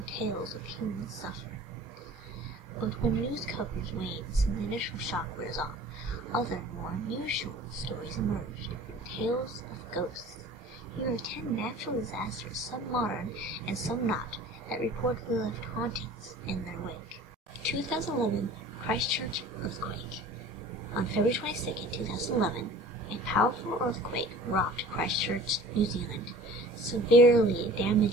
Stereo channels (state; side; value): normal; both; correlation 0.45